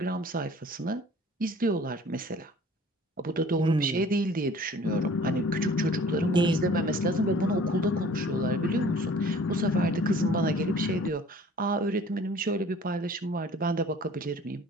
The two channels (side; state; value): both; normal; correlation 0.50